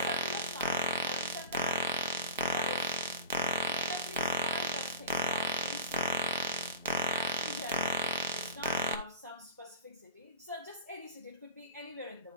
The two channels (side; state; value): both; inverted; correlation -0.35